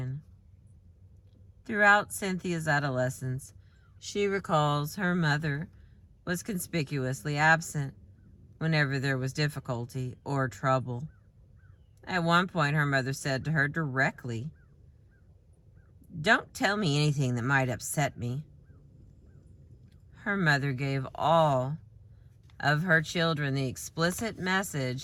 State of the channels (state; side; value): identical; both; correlation 1.00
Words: Throughout Cynthia's adolescence, she recalls her mother was conspicuously absent whenever there was difficulty or trouble. At one point, her mother said to her directly, "Don't tell me anything that might upset me." Her mother gave all of her children the explicit